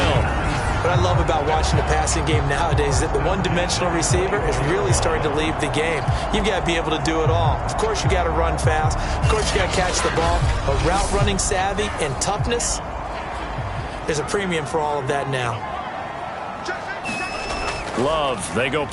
What I love about watching the passing game nowadays is that the one-dimensional receiver is really starting to leave the game. You've got to be able to do it all. Of course, you got to run fast. Of course, you got to catch the ball. But route running savvy and toughness, there's a premium for all of that now. Love, they go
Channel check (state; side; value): identical; both; correlation 1.00